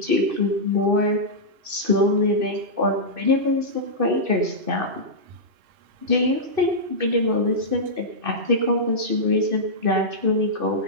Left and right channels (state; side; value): late; left; 2.6 ms